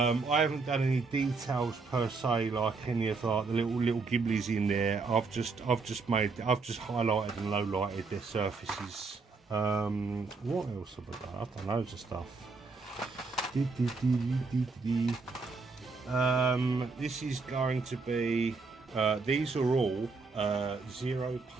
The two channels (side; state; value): left; quieter; 4.2 dB